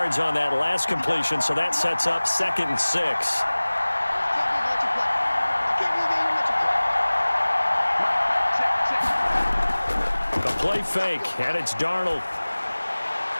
on that last completion, so that sets up 2nd and 6. The play fake, and it's Darnold.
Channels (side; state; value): both; inverted; correlation -1.00